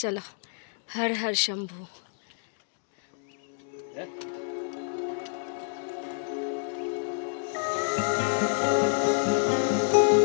চলো, হর হর শম্ভু।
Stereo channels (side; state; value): right; silent; digital silence